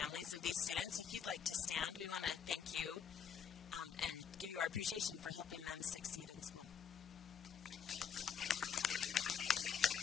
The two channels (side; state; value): right; quieter; 7.5 dB